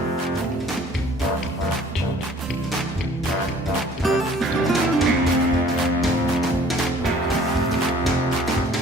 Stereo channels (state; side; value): normal; both; correlation 0.53